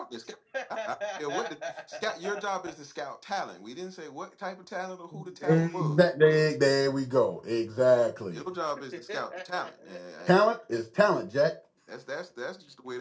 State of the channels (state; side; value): identical; both; correlation 1.00